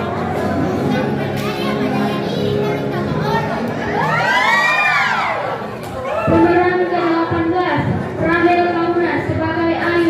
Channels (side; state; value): both; identical; correlation 1.00